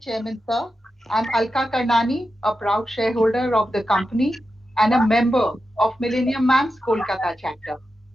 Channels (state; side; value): normal; both; correlation 0.90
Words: Chairman, sir. I'm Alka Karnani, a proud shareholder of the company and a member of Millennium Mams Kolkata chapter.